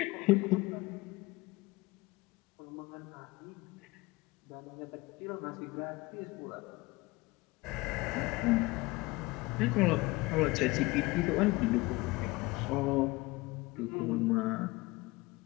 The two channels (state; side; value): quieter; right; 22.4 dB